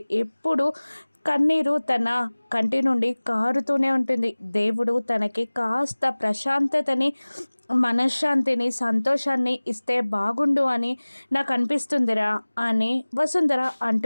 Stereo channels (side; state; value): both; inverted; correlation -1.00